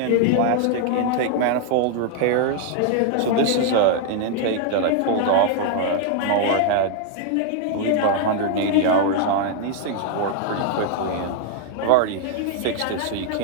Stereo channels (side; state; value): both; different; correlation 0.00